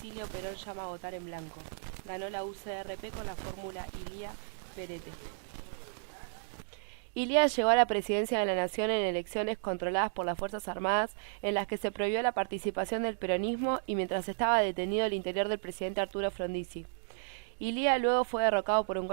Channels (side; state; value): left; silent; digital silence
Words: Perón llama a votar en blanco. Ganó la UCRP con la fórmula Ilía-Perete. Ilía llegó a la presidencia de la Nación en elecciones controladas por las Fuerzas Armadas en las que se prohibió la participación del peronismo y mientras estaba detenido el interior del presidente Arturo Frondizi. Ilía luego fue derrocado por un